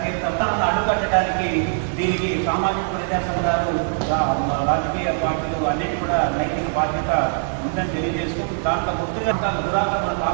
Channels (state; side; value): silent; left; digital silence